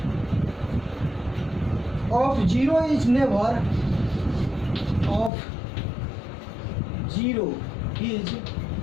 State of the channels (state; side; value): drops out; right; at 5.3 s